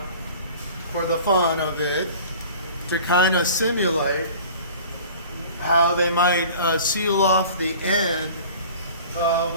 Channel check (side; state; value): both; inverted; correlation -0.43